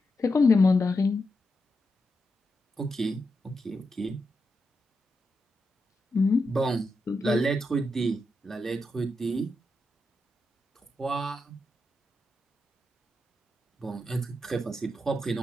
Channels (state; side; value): normal; both; correlation 0.86